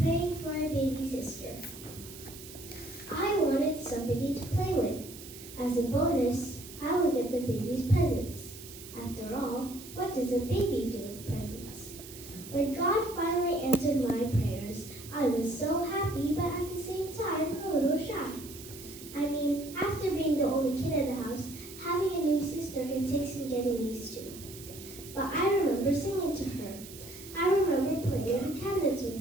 for a baby sister. I wanted somebody to play with. As a bonus, I would get the baby's presents. After all, what does a baby do with presents? When God finally answered my prayers, I was so happy, but at the same time, a little shy. I mean, after being the only kid in the house, having a new sister can take some getting used to. But I remember singing to her. I remember playing with the cabinets with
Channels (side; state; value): right; noise; hiss, 15 dB below the sound